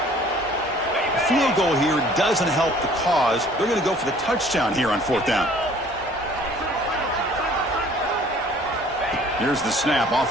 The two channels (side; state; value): both; normal; correlation 0.54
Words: A field goal here doesn't help the cause. They're going to go for the touchdown here on fourth down. Here's the snap.